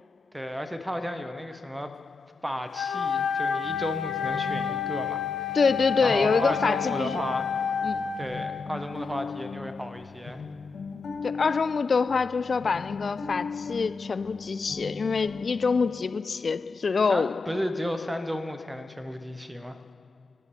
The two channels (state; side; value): quieter; right; 4.2 dB